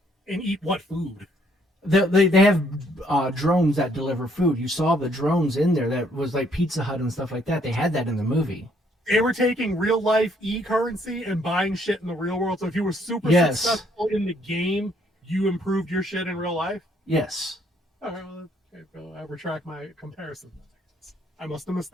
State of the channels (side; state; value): both; normal; correlation 0.67